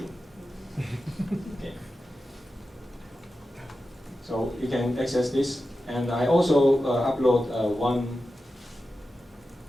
Okay. So you can access this, and I also upload one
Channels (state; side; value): normal; both; correlation 0.92